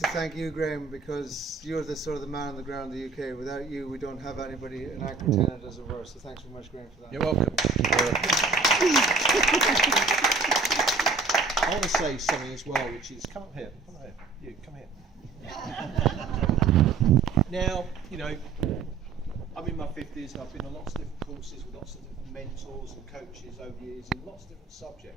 thank you, Graham, because you're the sort of the man on the ground in the UK. Without you, we don't have anybody, an anchor tenant as it were. So thanks very much, Graham, for that. You're welcome. I want to say something as well, which is, come up here, you, come here. Now, you know, I'm in my 50s and I've been on lots of different courses with lots of different mentors and coaches over the years in lots of different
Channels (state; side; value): quieter; left; 4.5 dB